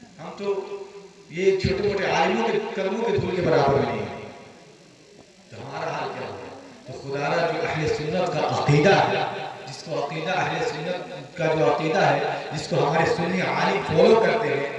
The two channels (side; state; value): both; identical; correlation 1.00